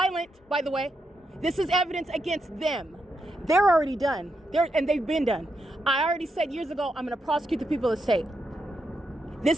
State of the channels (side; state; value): both; normal; correlation 0.83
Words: by the way. This is evidence against them. They're already done. And they've been done. I already said years ago, I'm going to prosecute the people of the state. This